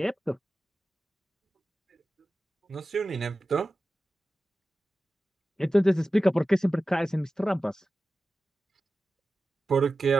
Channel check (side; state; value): both; normal; correlation 0.94